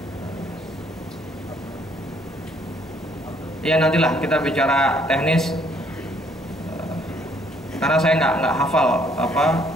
Ya nantilah kita bicara teknis, karena saya nggak hafal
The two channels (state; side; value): normal; both; correlation 0.65